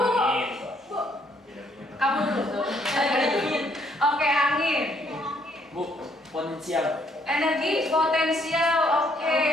Kamu dulu. Oke, angin. Bu, potensial. Energi potensial. Oke,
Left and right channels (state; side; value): normal; both; correlation 0.68